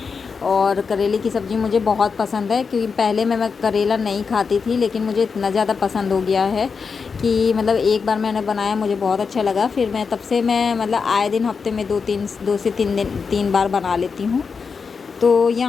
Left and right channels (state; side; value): quieter; right; 5.4 dB